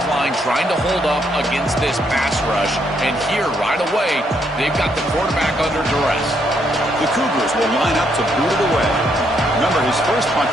line trying to hold up against this pass rush. And here, right away, they've got the quarterback under duress. The Cougars will line up to boot it away. Remember, his first punt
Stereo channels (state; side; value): normal; both; correlation 0.74